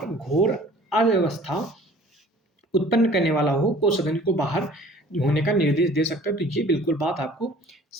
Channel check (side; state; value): both; normal; correlation 0.50